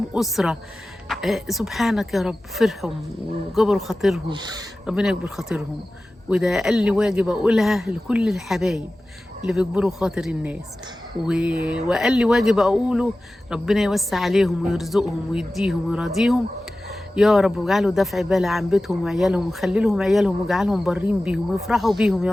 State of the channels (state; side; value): normal; both; correlation 0.96